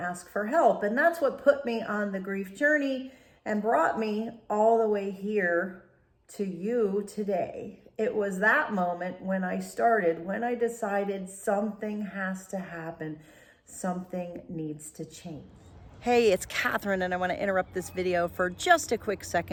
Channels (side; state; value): both; identical; correlation 1.00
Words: for help. And that's what put me on the grief journey and brought me all the way here to you today. It was that moment when I decided something has to happen. Something needs to change. Hey, it's Catherine, and I want to interrupt this video for just a quick